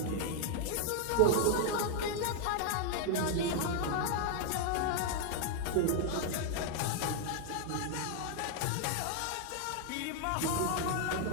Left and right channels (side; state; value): both; different; correlation 0.00